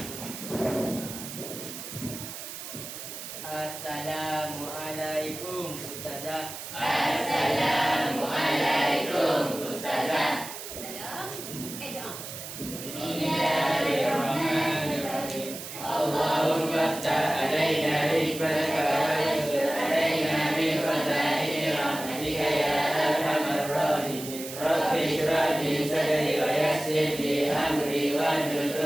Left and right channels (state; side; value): noise; right; hiss, 10 dB below the sound